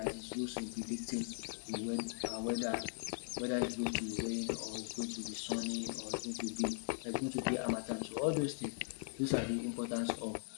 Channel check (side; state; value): right; silent; digital silence